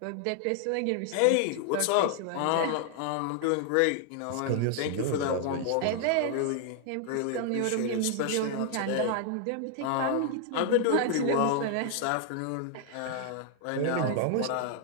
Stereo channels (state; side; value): different; both; correlation 0.00